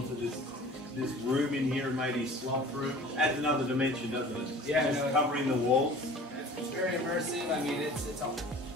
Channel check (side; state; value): both; normal; correlation 0.44